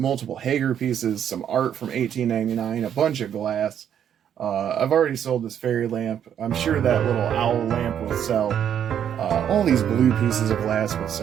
Haeger pieces, some art from 1899, a bunch of glass. I've already sold this fairy lamp. I'm sure that little owl lamp will sell. All these blue pieces of glass will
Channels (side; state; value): left; quieter; 9.3 dB